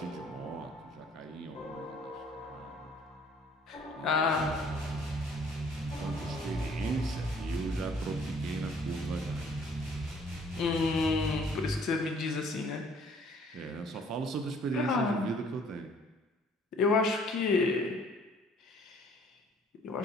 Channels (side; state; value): both; normal; correlation 0.58